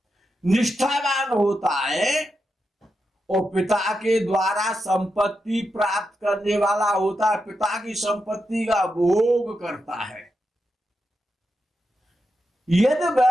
निष्ठावान होता है और पिता के द्वारा संपत्ति प्राप्त करने वाला होता है, पिता की संपत्ति का भोग करता है। यदि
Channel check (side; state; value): both; normal; correlation 0.87